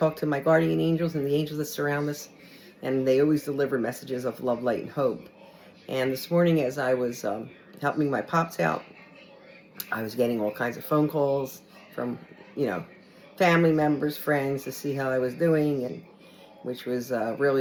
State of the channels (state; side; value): identical; both; correlation 1.00